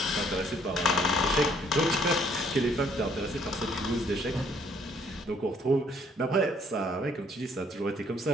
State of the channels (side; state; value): both; normal; correlation 0.64